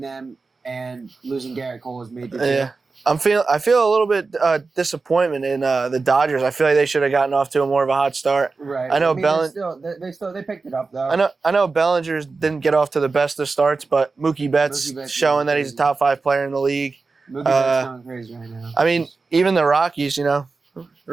them and losing Garrett Cole has made the team. Yeah. I feel a little bit disappointment in the Dodgers. I feel like they should have gotten off to a more of a hot start. Right. I know they picked it up though. I know Bellinger didn't get off to the best of starts, but Mookie Betts showing that he's a top 5 player in the league. Mookie Betts going crazy right now. I mean, even the Rockies,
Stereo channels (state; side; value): quieter; left; 4.1 dB